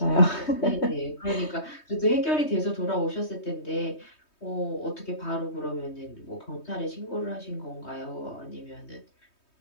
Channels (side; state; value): right; late; 3.2 ms